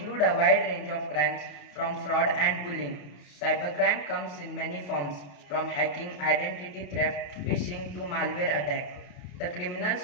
a wide range of crimes from fraud and bullying. Cybercrime comes in many forms, from hacking, identity theft, phishing to malware attack. The criminals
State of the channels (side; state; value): right; late; 27 ms